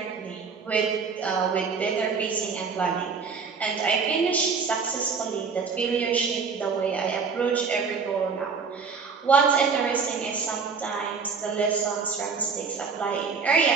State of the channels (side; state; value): left; quieter; 5.4 dB